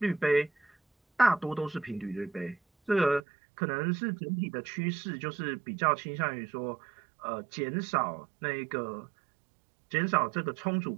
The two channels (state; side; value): drops out; left; at 3.2 s